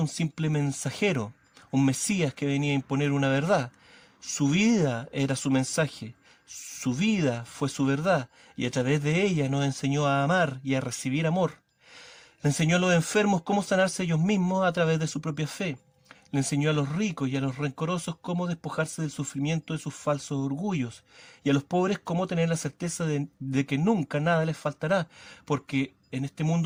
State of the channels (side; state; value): both; identical; correlation 1.00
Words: simple mensajero, un mesías que venía a imponer una verdad. Su vida era su mensaje, su vida fue su verdad, y a través de ella nos enseñó a amar y a recibir amor. Le enseñó a los enfermos cómo sanarse ellos mismos a través de su propia fe. Le enseñó a los ricos y a los rencorosos cómo despojarse del sufrimiento de sus falsos orgullos, y a los pobres cómo tener la certeza de que nunca nada les faltará, porque en este